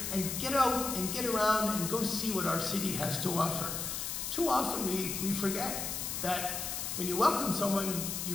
and get out and get around and go see what our city has to offer. Too often we forget that when you welcome someone, you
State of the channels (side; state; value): left; noise; hiss, 3 dB below the sound